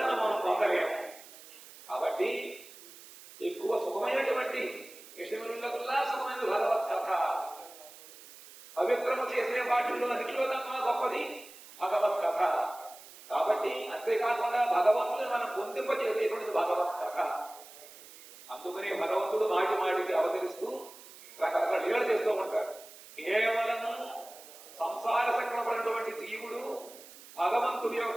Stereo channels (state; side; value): noise; right; hiss, 19 dB below the sound